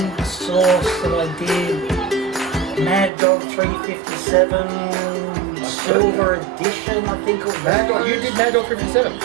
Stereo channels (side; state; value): left; drops out; at 3.1 s